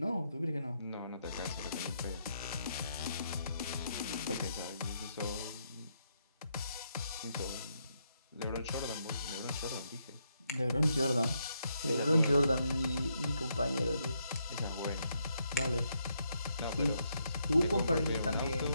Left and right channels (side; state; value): both; inverted; correlation -0.78